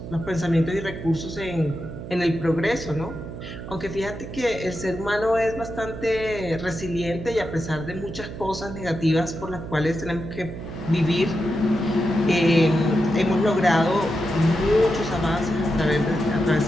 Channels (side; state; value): right; noise; hum, 10 dB below the sound